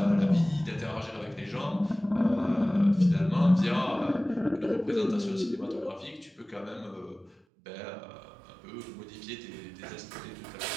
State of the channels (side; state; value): left; drops out; at 7.4 s